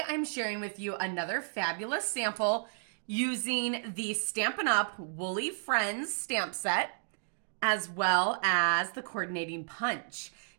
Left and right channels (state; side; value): silent; left; digital silence